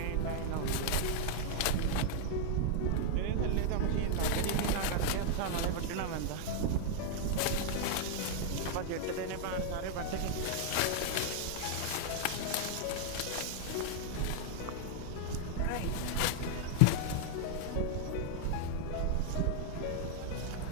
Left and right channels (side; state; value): both; different; correlation 0.00